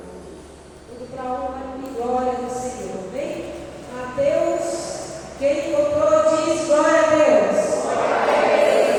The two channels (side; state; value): both; identical; correlation 1.00